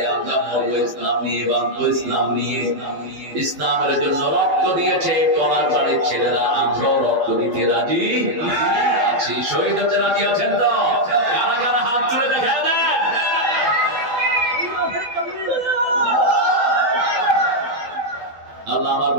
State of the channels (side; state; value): left; late; 12 ms